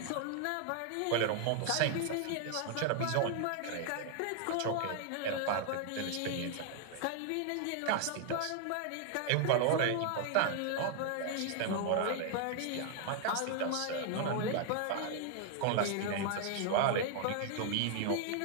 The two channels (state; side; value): different; both; correlation 0.00